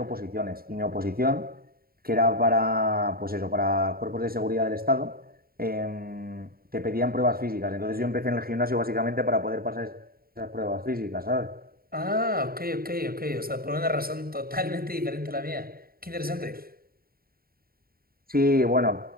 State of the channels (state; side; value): late; left; 0.43 ms